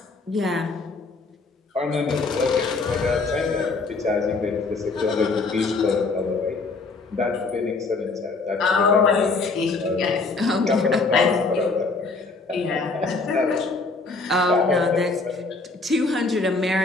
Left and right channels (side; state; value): right; quieter; 3.8 dB